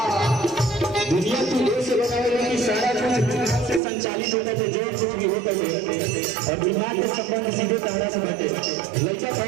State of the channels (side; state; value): left; drops out; at 3.8 s